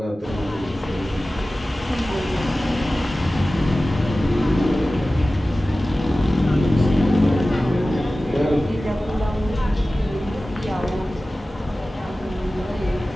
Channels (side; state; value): both; normal; correlation 0.96